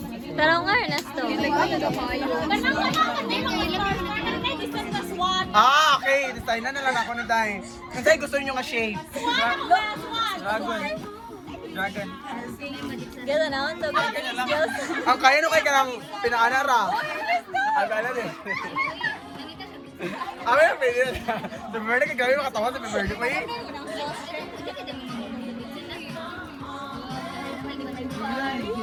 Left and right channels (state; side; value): identical; both; correlation 1.00